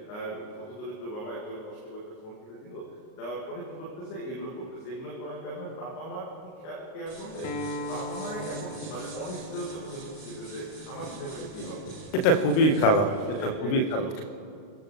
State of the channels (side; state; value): right; late; 38 ms